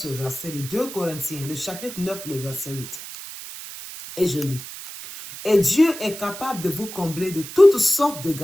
verset, le 2 Corinthiens, le chapitre 9, le verset 8. Et je lis. Et Dieu est capable de vous combler de toutes sortes de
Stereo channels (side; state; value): right; noise; hiss, 12 dB below the sound